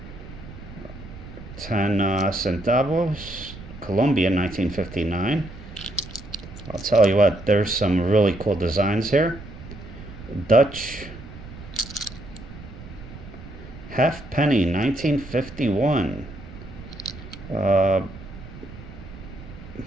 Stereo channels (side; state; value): right; noise; rumble, 15 dB below the sound